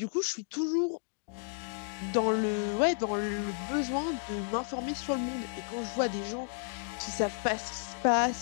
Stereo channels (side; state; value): right; silent; 56 dB below the other